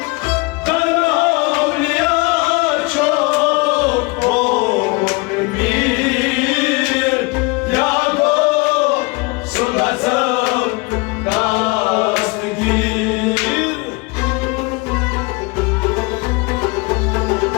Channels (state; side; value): quieter; right; 26.7 dB